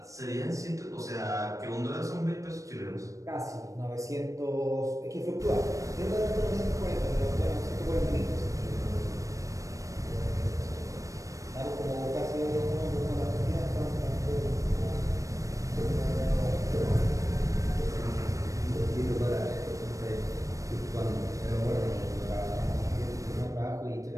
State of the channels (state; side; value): late; left; 0.16 ms